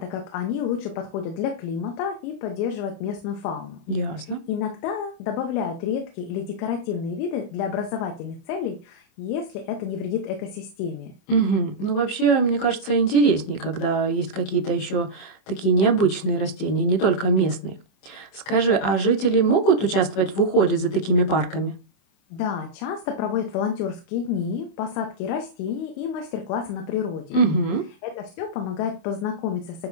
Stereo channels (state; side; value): late; right; 27 ms